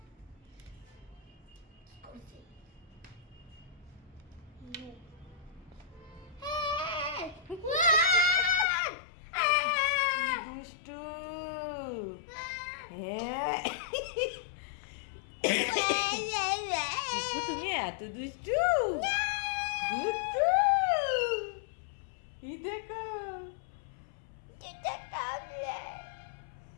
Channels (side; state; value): right; drops out; at 8.7 s